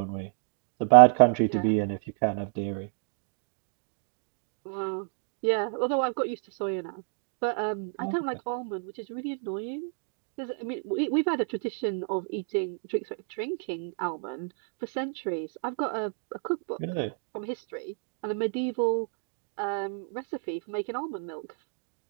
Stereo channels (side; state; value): left; silent; 58 dB below the other